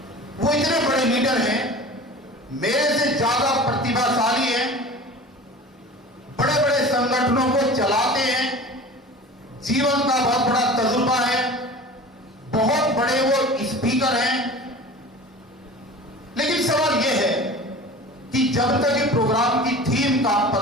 वो इतने बड़े लीडर हैं, मेरे से ज्यादा प्रतिभाशाली हैं, बड़े बड़े संगठनों को चलाते हैं, जीवन का बहुत बड़ा तजुर्बा है, बहुत बड़े वो स्पीकर हैं। लेकिन सवाल यह है कि जब तक ये प्रोग्राम की थीम का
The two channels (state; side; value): normal; both; correlation 0.38